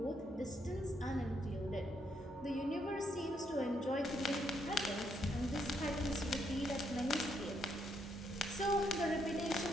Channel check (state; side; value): normal; both; correlation 0.75